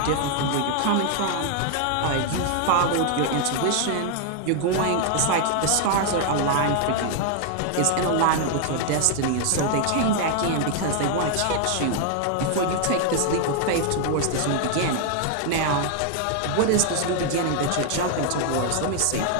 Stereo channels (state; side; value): different; both; correlation 0.00